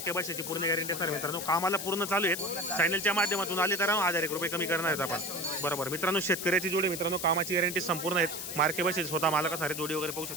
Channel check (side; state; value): left; noise; hiss, 6 dB below the sound